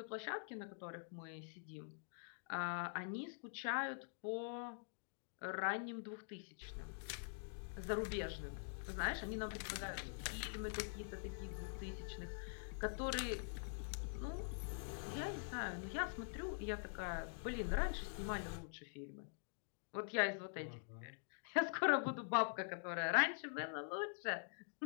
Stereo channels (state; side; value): silent; right; digital silence